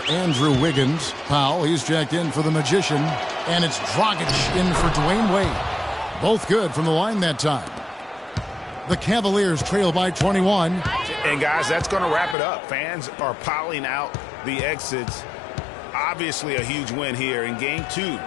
Andrew Wiggins. Powell, he's checked in for the Magician. And it's Dragic in for Dwayne Wade. Both good from the line that time. The Cavaliers trail by 21. And guys, that's going to wrap it up. Fans are piling out the exits. Obviously a huge win here in Game 2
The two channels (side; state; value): right; drops out; at 12.4 s